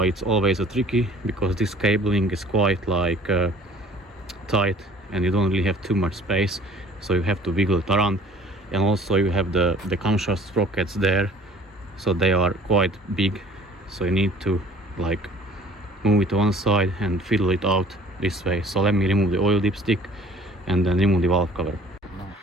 it's always a tricky because this cabling is quite like tight and you don't really have too much space, so you have to wiggle it around. And also you have the camshaft sprockets there, so they are quite big, so you need to like move it to one side and fiddle it out this way. So let me remove the oil dipstick and then remove the valve cover.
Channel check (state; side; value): normal; both; correlation 0.51